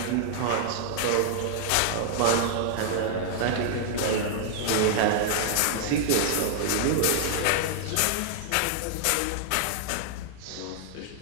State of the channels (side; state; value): both; different; correlation -0.01